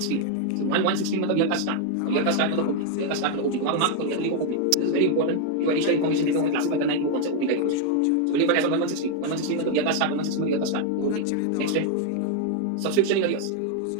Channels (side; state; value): both; different; correlation 0.01